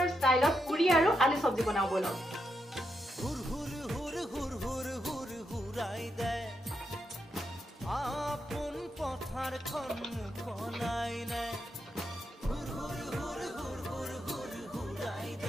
ষ্টাইলত পুৰি আৰু আলু চব্জি বনাও বলক হুৰ হুৰ হুৰ হুৰ হুৰ হুৰ হুৰাই দে আপোন পথাৰখন মুকলাই নাই হুৰ হুৰ হুৰ হুৰ হুৰ হুৰ হুৰাই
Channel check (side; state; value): both; normal; correlation 0.83